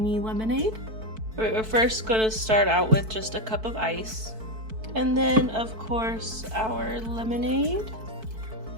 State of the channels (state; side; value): late; left; 4.6 ms